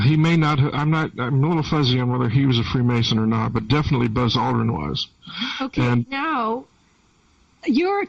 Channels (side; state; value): both; identical; correlation 1.00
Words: he may not have... I'm a little fuzzy on whether he was a Freemason or not, but definitely Buzz Aldrin was. Okay, now, you're